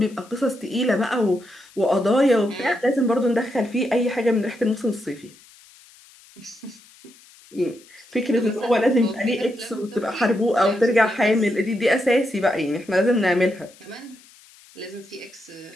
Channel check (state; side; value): noise; left; hiss, 25 dB below the sound